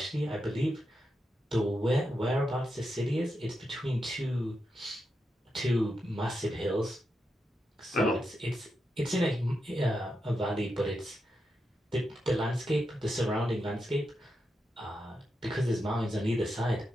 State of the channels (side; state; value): both; normal; correlation 0.86